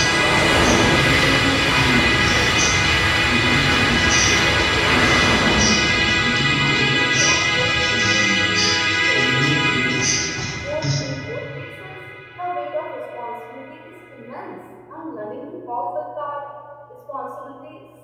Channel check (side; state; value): both; identical; correlation 1.00